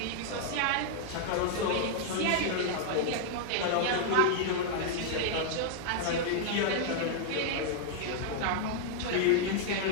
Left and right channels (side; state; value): both; different; correlation 0.00